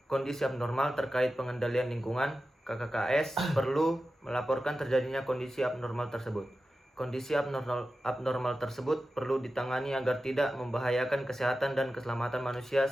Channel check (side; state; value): both; normal; correlation 0.93